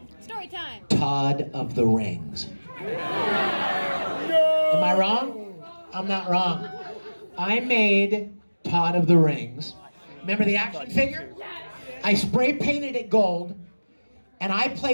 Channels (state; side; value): inverted; both; correlation -1.00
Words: Story time. Todd of the Rings. No! Am I wrong? I'm not wrong. I made Todd of the Rings. Remember the action figure? I spray painted it gold, and I